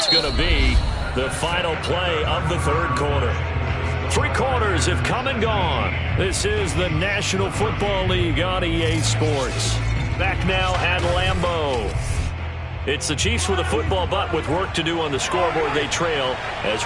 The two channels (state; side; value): identical; both; correlation 1.00